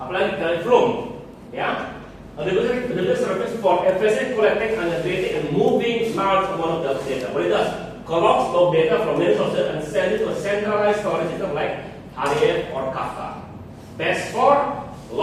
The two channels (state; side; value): identical; both; correlation 1.00